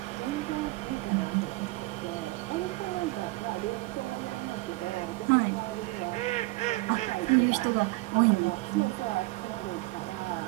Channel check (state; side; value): quieter; left; 21.8 dB